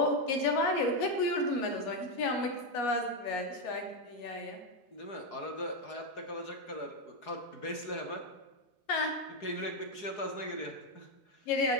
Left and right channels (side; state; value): right; late; 4.8 ms